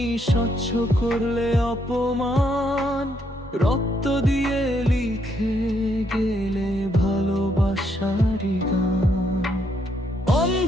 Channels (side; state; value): both; normal; correlation 0.74